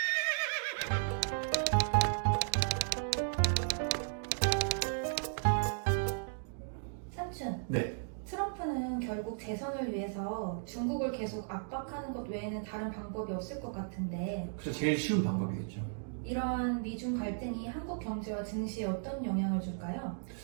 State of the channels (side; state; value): left; silent; digital silence